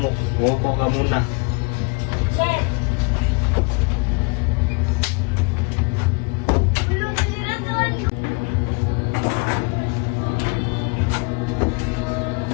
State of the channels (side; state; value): right; quieter; 31.9 dB